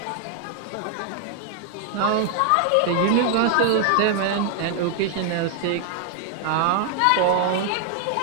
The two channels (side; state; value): both; different; correlation 0.00